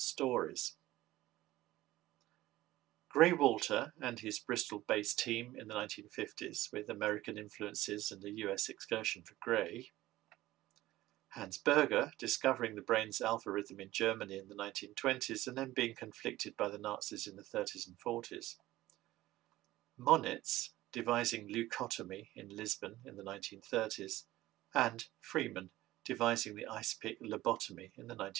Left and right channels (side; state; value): left; quieter; 16.4 dB